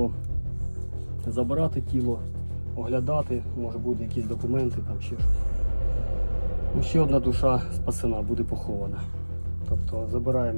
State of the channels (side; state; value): both; inverted; correlation -1.00